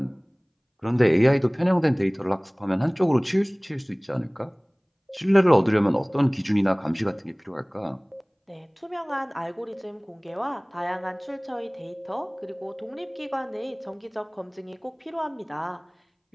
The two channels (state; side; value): identical; both; correlation 1.00